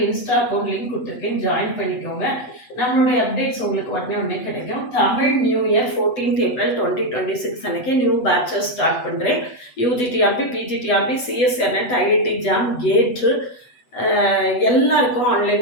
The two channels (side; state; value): right; late; 8.1 ms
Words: Insta account link கொடுத்துருக்கேன், ஜாயின் பண்ணிக்கோங்க. நம்மளுடைய அப்டேட்ஸ் உங்களுக்கு உடனே கிடைக்கும். Tamil new year 14th April 2026 அன்றைக்கி நியூ பேட்சஸ் ஸ்டார்ட் பண்ணுறேன். யூஜிடிஆர்பி, பிஜிடிஆர்பி, சிஎஸ்ஆர்நெட், ஐஐடி ஜாம், கேட்டு எல்லாருக்கும் ஆன்லைன்